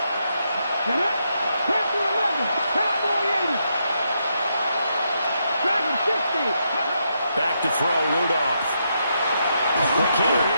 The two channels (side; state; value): both; inverted; correlation -0.80